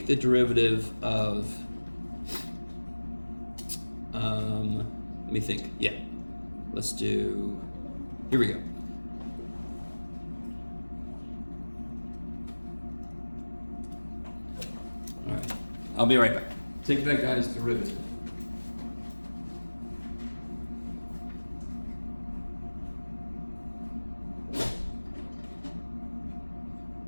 the derivative of, let me think, yeah. Let's do, here we go. All right, I'll be right back. Take that guy's derivative.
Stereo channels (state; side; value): inverted; both; correlation -1.00